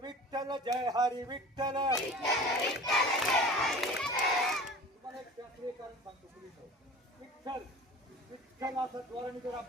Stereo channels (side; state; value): both; normal; correlation 0.40